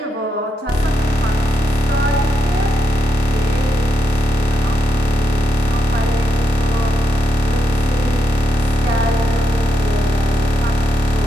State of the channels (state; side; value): normal; both; correlation 0.82